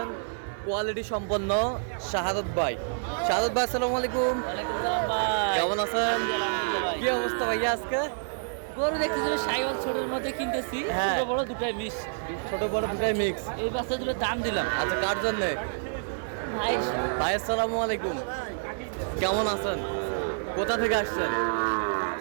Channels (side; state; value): left; silent; 59 dB below the other